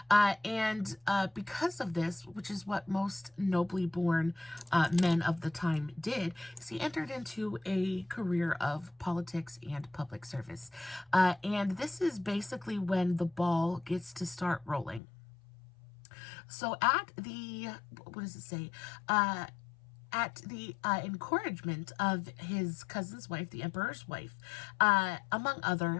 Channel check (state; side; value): drops out; right; at 15.0 s